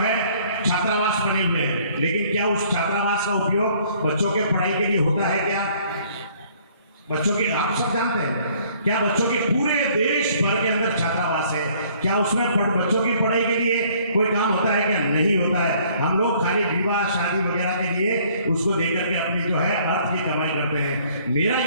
छात्रावास बने हुए हैं, लेकिन क्या उस छात्रावास का उपयोग बच्चों के पढ़ाई के लिए होता है? क्या बच्चों के, आप सब जानते हैं, क्या बच्चों के पूरे देश भर के अंदर छात्रावास है, क्या उसमें बच्चों की पढ़ाई के लिए कोई काम होता है? क्या नहीं होता है। हम लोग खाली विवाह शादी वगैरह के लिए उसको देकर के अपनी जो है अर्थ की कमाई करते हैं। मेरा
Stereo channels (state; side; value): inverted; both; correlation -0.60